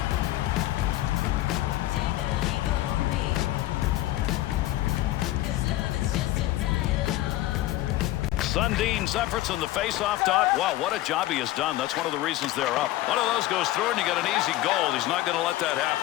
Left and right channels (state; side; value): quieter; right; 15.9 dB